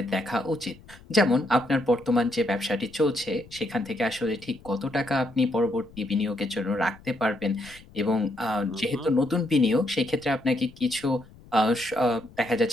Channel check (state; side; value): noise; left; rumble, 23 dB below the sound